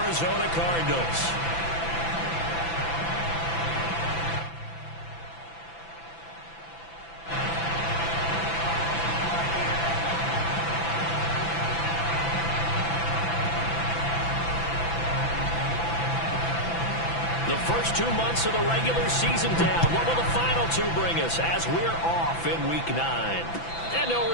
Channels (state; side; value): late; right; 6.0 ms